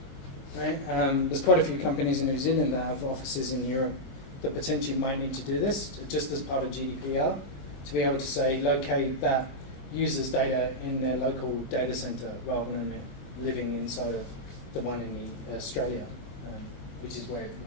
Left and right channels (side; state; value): right; late; 22 ms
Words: Right? There's quite a few companies in New Zealand that have offices in Europe that potentially might need to do this, just as part of GDPR, to be able to say, locate that user's data in their local data center rather than living inside of the one in Australia, which is where it